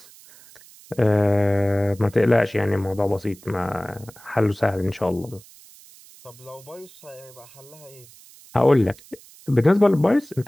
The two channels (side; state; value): right; noise; hiss, 23 dB below the sound